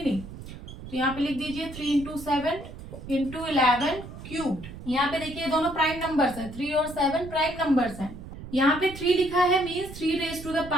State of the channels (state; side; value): noise; right; rumble, 13 dB below the sound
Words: नहीं। तो यहाँ पे लिख दीजिए 3 इंटू 7 इंटू 11 क्यूब्ड। यहाँ पे देखिए दोनों प्राइम नंबर्स हैं, 3 और 7 प्राइम नंबर्स हैं। यहाँ पे 3 लिखा है मीन्स 3 रेज टू द